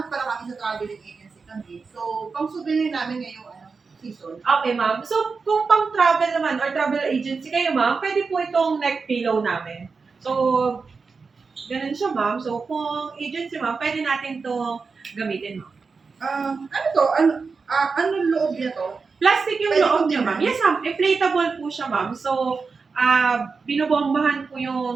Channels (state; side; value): quieter; left; 4.8 dB